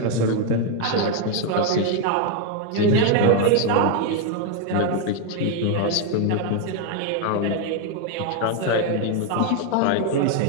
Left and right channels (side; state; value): both; different; correlation 0.01